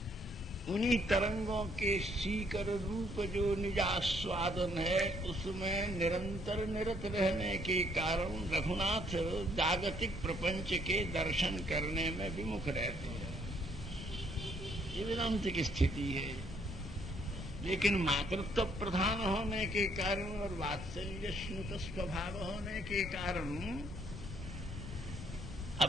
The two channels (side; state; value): both; normal; correlation 0.67